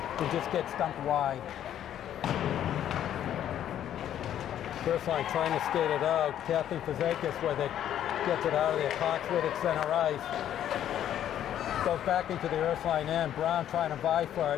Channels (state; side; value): quieter; right; 10.8 dB